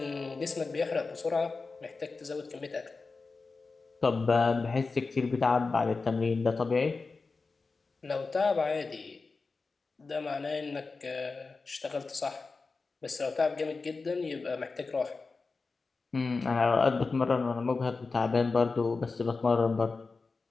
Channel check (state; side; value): quieter; right; 4.1 dB